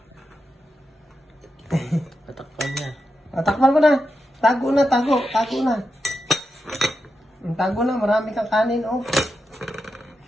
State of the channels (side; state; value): both; normal; correlation 0.87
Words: Tatakpan niya. Takpan ko na. Tago na, tago. Tago na. Tago na, marami kang kanin, oh.